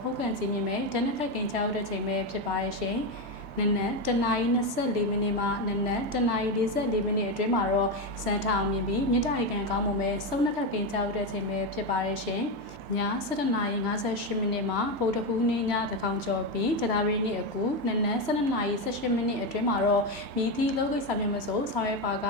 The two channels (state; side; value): normal; both; correlation 0.11